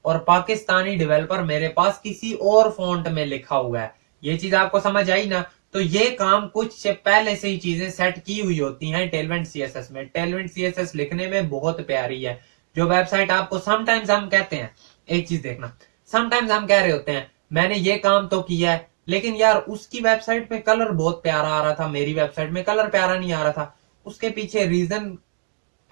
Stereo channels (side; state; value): left; silent; digital silence